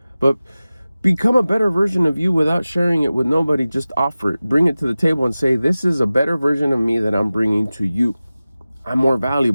But become a better version of you without sharing it with nobody. Just offer it. Bring it to the table and say, this is a better version of me that I'm bringing to you. I'm more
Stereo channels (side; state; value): both; inverted; correlation -0.96